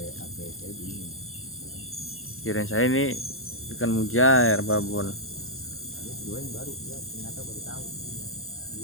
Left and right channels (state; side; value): late; right; 0.61 ms